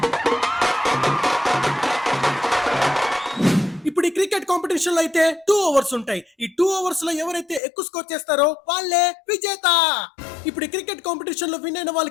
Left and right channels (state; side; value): drops out; right; at 7.6 s